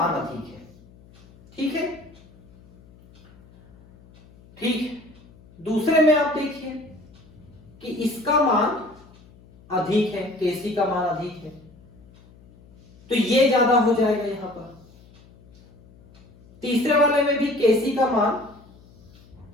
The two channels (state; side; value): noise; left; hum, 25 dB below the sound